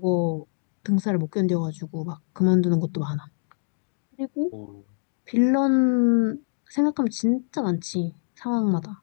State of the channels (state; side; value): silent; right; digital silence